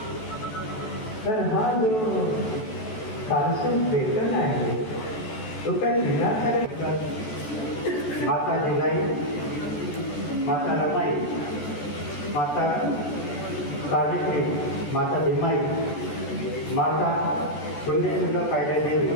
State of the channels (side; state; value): right; late; 14 ms